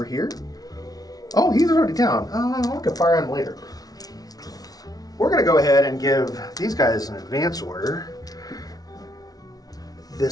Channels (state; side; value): late; right; 0.18 ms